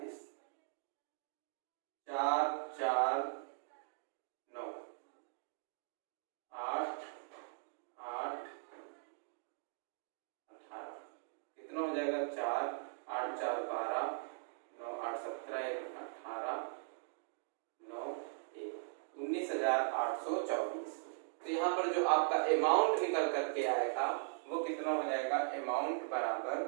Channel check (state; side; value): silent; left; digital silence